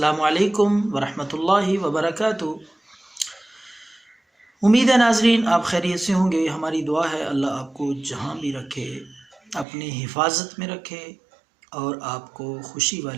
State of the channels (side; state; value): left; drops out; at 9.7 s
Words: علیکم ورحمۃ اللہ وبرکاتہ۔ امید ہے ناظرین آپ خیریت سے ہوں گے۔ ہماری دعا ہے اللہ آپ کو جہاں بھی رکھے اپنی حفاظت میں رکھے اور آپ کو خوشی